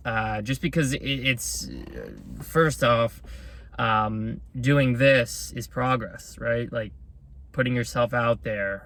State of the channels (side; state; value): both; identical; correlation 1.00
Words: just because it's, first off, doing this is progress, right? Like putting yourself out